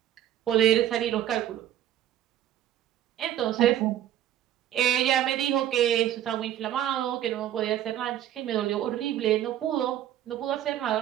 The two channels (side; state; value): left; quieter; 11.5 dB